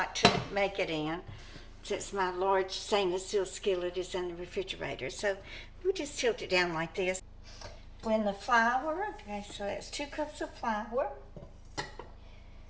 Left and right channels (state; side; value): identical; both; correlation 1.00